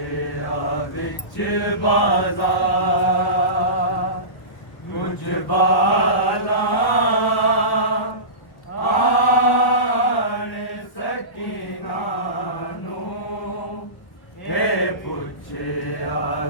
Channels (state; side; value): late; right; 1.3 ms